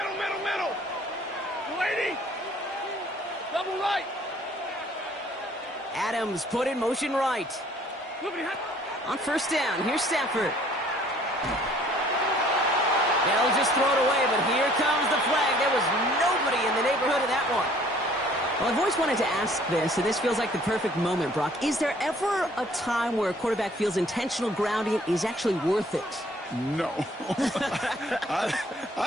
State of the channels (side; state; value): both; normal; correlation 0.57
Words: 280. Double right. Adams put in motion right. On 1st down, here's Stafford. They'll just throw it away, but here comes the flag. There was nobody in the neighborhood of that one. Well, I've always wanted to ask this, and this feels like the perfect moment, Brock. Is there ever a time where a quarterback feels intentional grounding is actually worth it? No. I